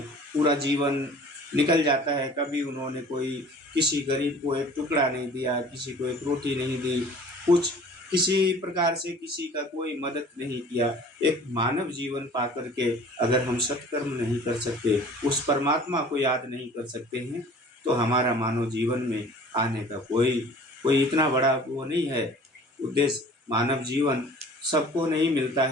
पूरा जीवन निकल जाता है, कभी उन्होंने कोई किसी गरीब को एक टुकड़ा नहीं दिया, किसी को एक रोटी नहीं दी, कुछ किसी प्रकार से किसी का कोई मदद नहीं किया। एक मानव जीवन पा करके अगर हम सत्कर्म नहीं कर सकते, उस परमात्मा को याद नहीं कर सकते हैं, तो हमारा मानव जीवन में आने का कोई इतना बड़ा वो नहीं है उद्देश्य। मानव जीवन सबको नहीं मिलता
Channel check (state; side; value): normal; both; correlation 0.47